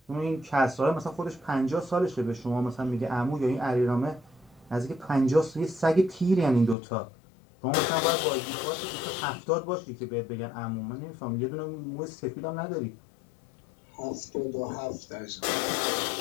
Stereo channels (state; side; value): drops out; right; at 6.8 s